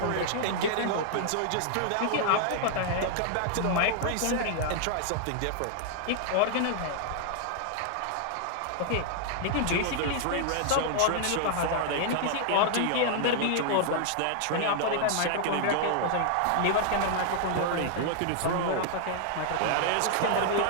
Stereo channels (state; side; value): different; both; correlation 0.00